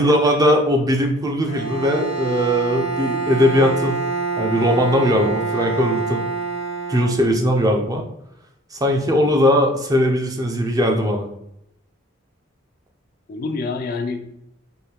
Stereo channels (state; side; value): normal; both; correlation 0.51